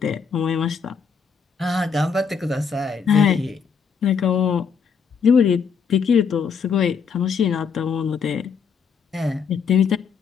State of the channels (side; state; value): right; quieter; 6.1 dB